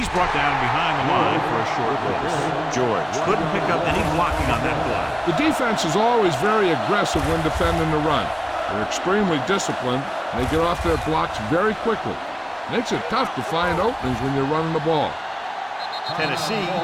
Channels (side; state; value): both; identical; correlation 1.00